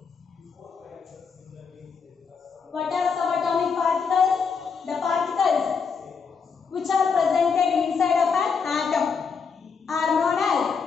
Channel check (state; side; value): quieter; right; 5.7 dB